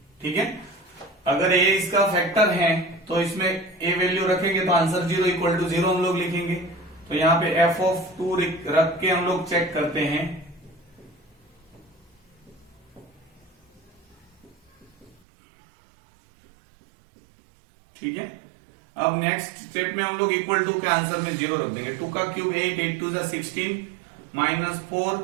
ठीक है, अगर a इसका फैक्टर है तो इसमें a वैल्यू रखेंगे तो आंसर 0 इक्वल टू 0 हम लोग लिखेंगे। तो यहाँ पे f ऑफ 2 रख के हम लोग चेक करते हैं। ठीक है, अब नेक्स्ट स्टेप में हम लोग इक्वल टू के आंसर में 0 रख देंगे। 2 का cube 8, 8 2 16, -4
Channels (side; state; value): left; drops out; at 15.2 s